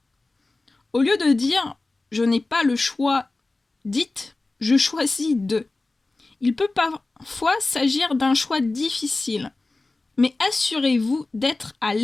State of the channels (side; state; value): right; quieter; 3.2 dB